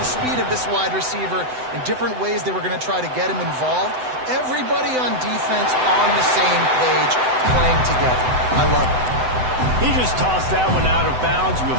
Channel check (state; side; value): late; left; 7.9 ms